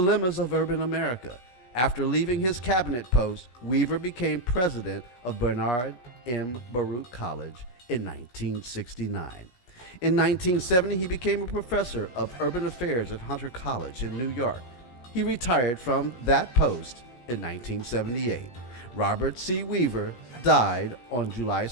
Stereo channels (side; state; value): right; late; 17 ms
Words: of Urban America. After leaving his cabinet post, Weaver became president of Bernard M. Baruch College in 1969. In 1970, he became a professor of urban affairs at Hunter College in New York. He retired from that post in 1978. Robert C. Weaver died on July